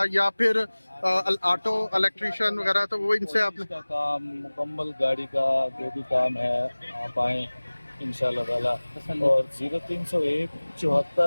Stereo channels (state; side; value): inverted; both; correlation -1.00